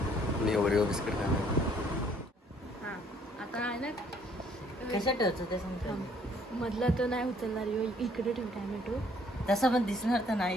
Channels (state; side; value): normal; both; correlation 0.62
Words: मी ओरिओ बिस्किट खाणार. आता आहे ना कसं ठेवतो ते सांगतो. मधला तो नाही उचलणार. इकडे ठेव टॅमॅटो. तसं पण दिसणार तर